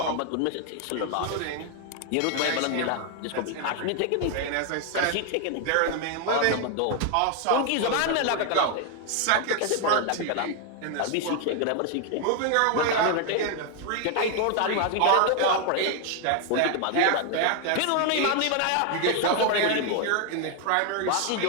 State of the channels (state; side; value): different; both; correlation 0.01